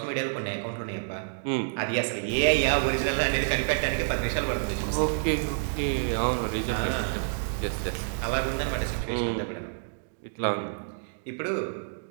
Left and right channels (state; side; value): silent; left; digital silence